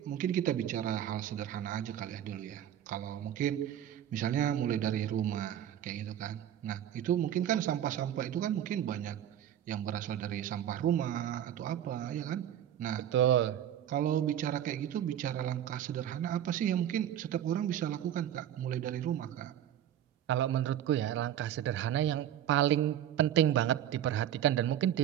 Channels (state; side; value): quieter; left; 10.8 dB